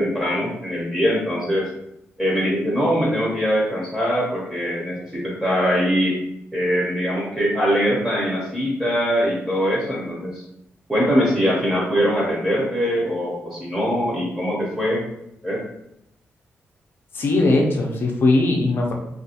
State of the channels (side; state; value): both; normal; correlation 0.80